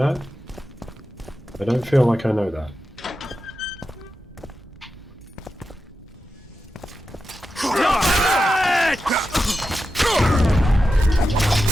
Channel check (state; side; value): normal; both; correlation 0.90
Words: I don't feel like I know that.